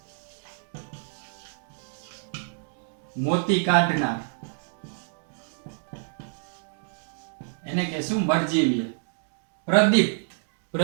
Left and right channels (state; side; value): silent; left; digital silence